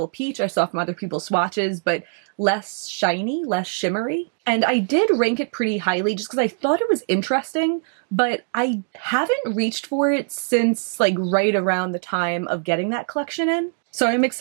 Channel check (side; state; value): left; silent; 64 dB below the other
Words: Peach I saw from other people's swatches, but less shiny, less shimmery. And I did rank it pretty highly just because I thought it was interesting, but I haven't reached for it since like right around the time of getting that collection in. So I'm